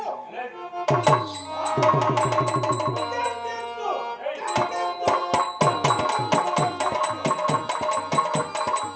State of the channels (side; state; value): both; identical; correlation 1.00